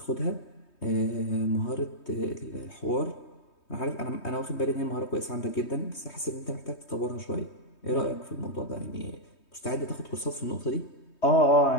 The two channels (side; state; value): right; late; 3.2 ms